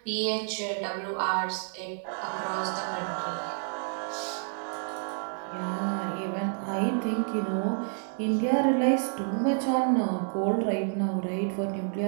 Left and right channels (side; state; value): left; silent; 58 dB below the other